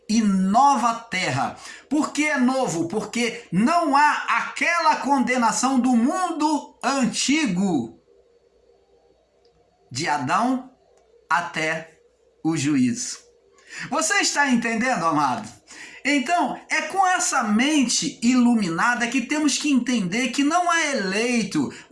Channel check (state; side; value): identical; both; correlation 1.00